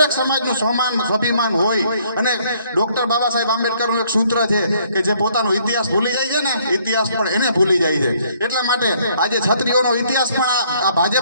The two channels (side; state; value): both; inverted; correlation -0.65